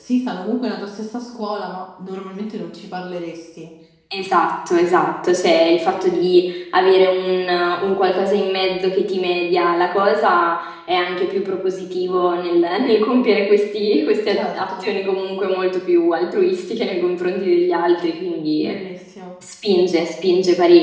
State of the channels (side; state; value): both; identical; correlation 1.00